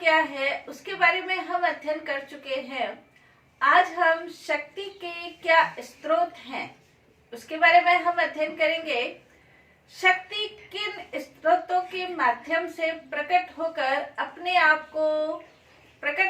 है, उसके बारे में हम अध्ययन कर चुके हैं। आज हम शक्ति के क्या स्रोत हैं उसके बारे में हम अध्ययन करेंगे। शक्ति किन स्रोतों के माध्यम से प्रकट होकर अपने आप को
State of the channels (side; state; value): both; identical; correlation 1.00